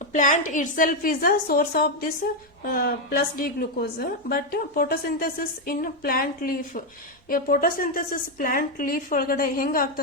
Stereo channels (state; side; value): normal; both; correlation 0.04